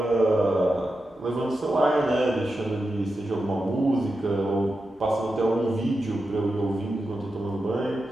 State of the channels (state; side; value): normal; both; correlation 0.90